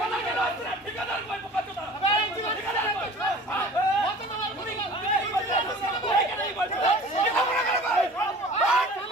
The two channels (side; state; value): both; normal; correlation 0.43